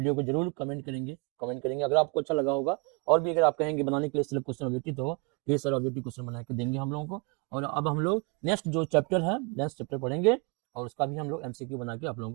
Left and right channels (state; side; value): quieter; left; 32.2 dB